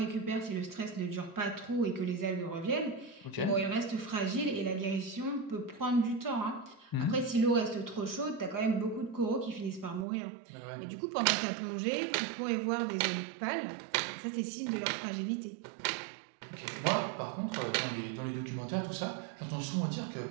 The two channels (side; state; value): left; drops out; at 10.1 s